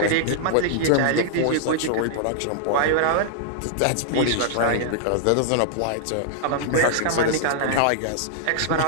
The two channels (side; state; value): both; different; correlation -0.01